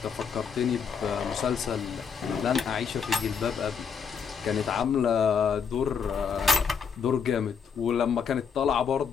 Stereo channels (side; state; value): right; quieter; 6.5 dB